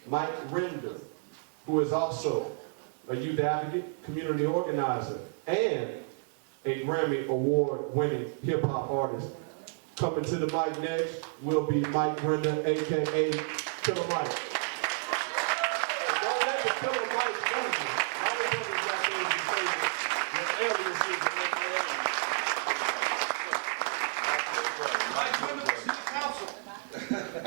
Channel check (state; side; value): silent; left; digital silence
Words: Mike Render, who is also a youth advocate, community organizer, and a Grammy Award winning hip-hop artist. Coming to the mic next will be Mike Render, aka Killer Mike. Don't let the Killer Mike fool you. A lot of brothers out there who say that aliases Mike Render, City Council.